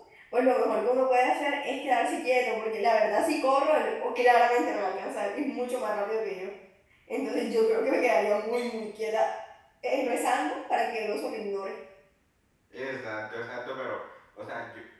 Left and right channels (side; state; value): both; identical; correlation 1.00